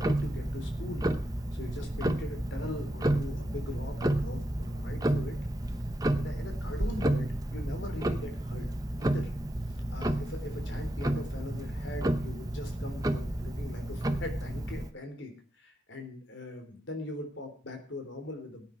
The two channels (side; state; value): both; normal; correlation 0.85